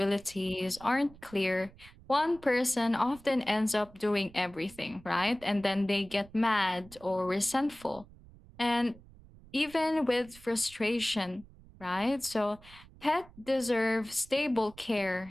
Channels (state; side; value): noise; right; rumble, 22 dB below the sound